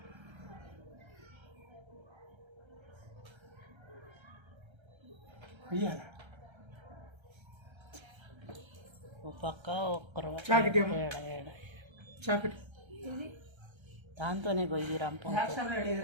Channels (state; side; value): late; left; 1.3 ms